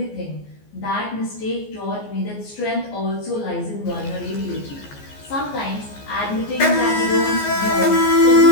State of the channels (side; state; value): right; late; 14 ms